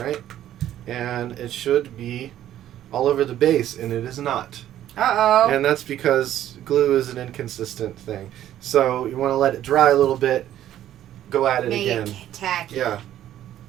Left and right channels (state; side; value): quieter; left; 12.1 dB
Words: And it should be all over the base, and it is not. Uh-oh. And that's because glue is an inconsistent thing. So you want to let it dry a little bit, go at it again. Make it tacky.